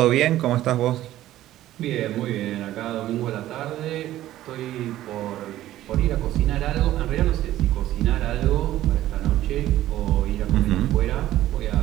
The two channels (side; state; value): left; quieter; 14.1 dB